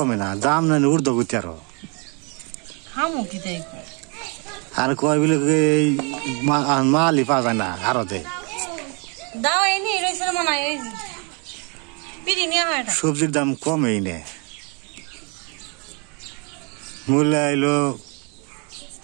না দাম না উর্ধ গতি আর কয় বলে মালই পাওয়া যায় না আরতে সবজির দাম কমেই নে মূল্য এলো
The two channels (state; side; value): quieter; left; 33.3 dB